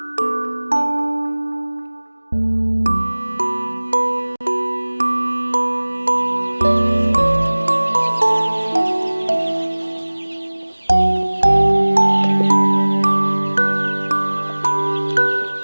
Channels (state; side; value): inverted; both; correlation -1.00